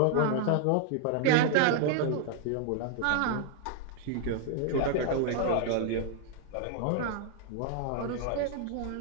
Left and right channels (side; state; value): both; different; correlation 0.00